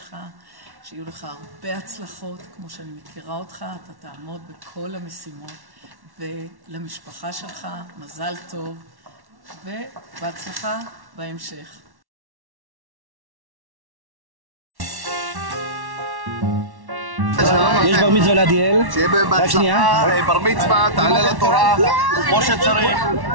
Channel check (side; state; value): left; late; 1.1 ms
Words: שיהיו לך הרבה הצלחות, כמו שאני מכירה אותך, אתה תעמוד בכל המשימות, ולמשפחה שלך מזל טוב, ובהצלחה בהמשך. יש בר מצווה לעדיאל. שיהיה בהצלחה, בר מצווה, תעלה לתורה, כמו שצריך.